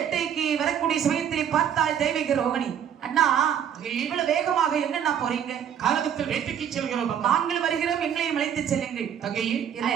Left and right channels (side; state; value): left; quieter; 8.9 dB